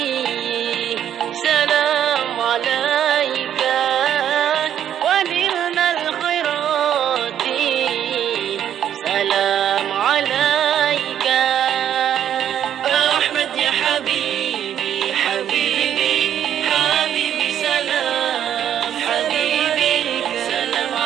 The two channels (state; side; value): quieter; left; 10.1 dB